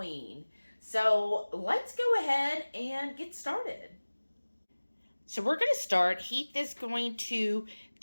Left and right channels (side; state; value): both; inverted; correlation -1.00